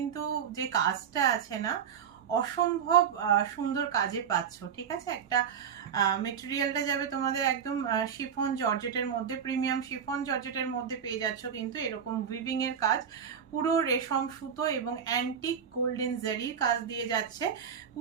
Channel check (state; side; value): quieter; left; 7.7 dB